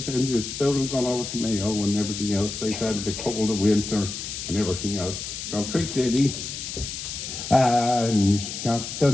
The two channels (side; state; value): left; noise; hiss, 7 dB below the sound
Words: and it's about him gone over to Mayo and everything else like that, the cold of winter and everything else. So quick ditty. And